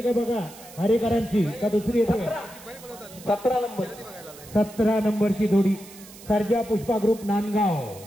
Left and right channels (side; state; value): right; noise; hiss, 19 dB below the sound